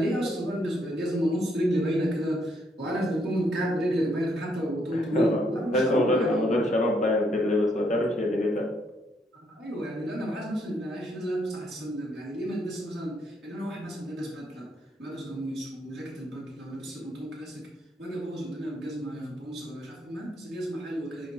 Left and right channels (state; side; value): normal; both; correlation 0.73